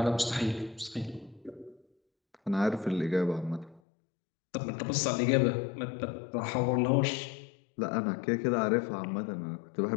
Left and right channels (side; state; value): right; drops out; at 3.8 s